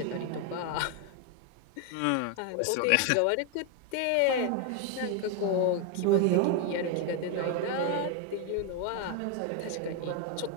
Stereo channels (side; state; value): both; different; correlation 0.01